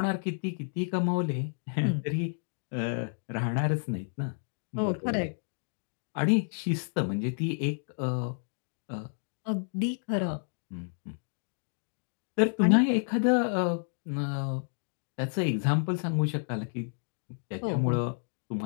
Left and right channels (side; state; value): right; silent; digital silence